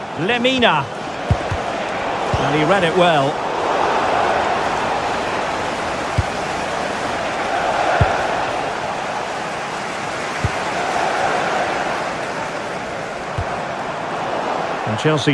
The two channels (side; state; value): both; identical; correlation 1.00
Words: Lemina. And he read it well. And